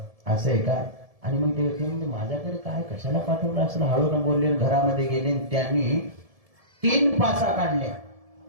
असं आहे का? आणि मग ते म्हणजे माझ्याकडे काय कशाला पाठवलं असं हळून बोलले. घरामध्ये गेले, त्यांनी 3 पासा काढल्या.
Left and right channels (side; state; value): left; late; 1.7 ms